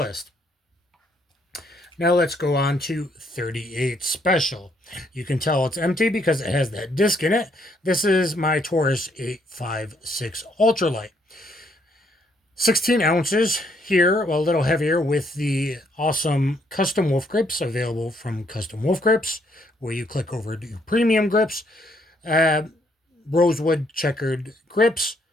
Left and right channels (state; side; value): normal; both; correlation 0.70